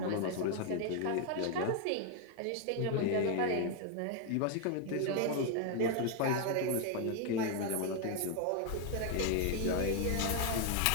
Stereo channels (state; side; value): different; both; correlation 0.00